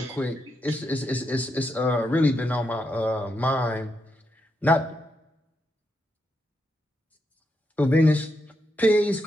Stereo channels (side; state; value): both; normal; correlation 0.82